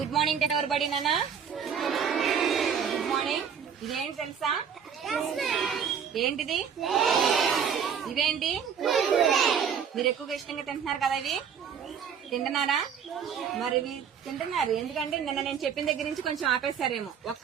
morning ఎవరు బడి నాన్న? Good morning. ఇదేంటి తెలుసా? ఏంటిది? ఇవేంటి? మీరు ఎక్కువగా ఇష్టంగా తింటున్నారు కదా, ఇవి తింటున్నారా? మరి ఇవి తింటున్నారు ఎందుకంటే నిన్న నేను చెప్పిన దగ్గర నుంచి కొంచెం ఆపేశారేమో.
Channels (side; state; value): left; quieter; 7.5 dB